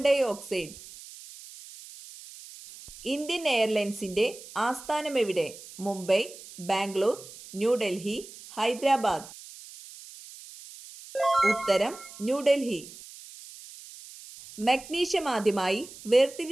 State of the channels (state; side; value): noise; right; hiss, 17 dB below the sound